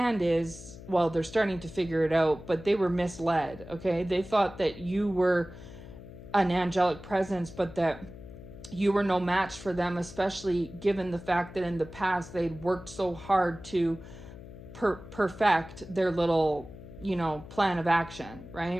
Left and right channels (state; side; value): noise; left; hum, 15 dB below the sound